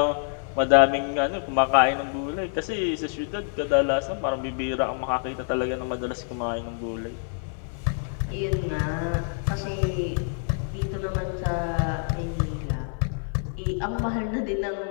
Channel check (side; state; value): right; silent; 61 dB below the other